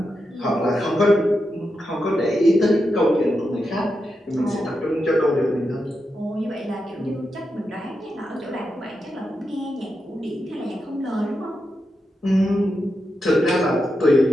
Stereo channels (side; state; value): both; normal; correlation 0.87